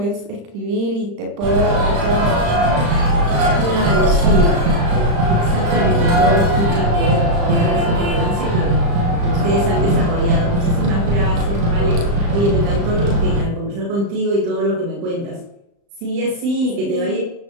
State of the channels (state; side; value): late; left; 35 ms